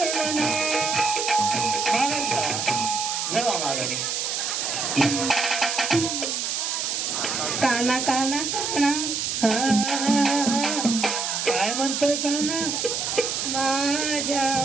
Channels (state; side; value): noise; right; hiss, 1 dB below the sound